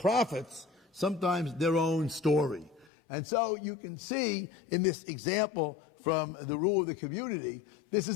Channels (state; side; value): drops out; right; at 2.9 s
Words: sometimes their own story. And so you can see in this example from the rule of the community, this